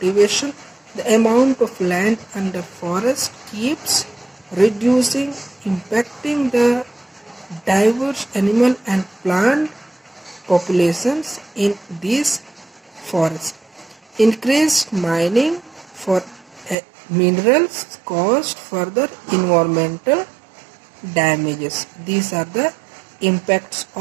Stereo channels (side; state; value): left; drops out; at 16.8 s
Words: the amount of land under forest keeps reducing, impacting the diverse animal and plant populations in these forests. Increased mining for minerals caused further environmental damages. These are the impacts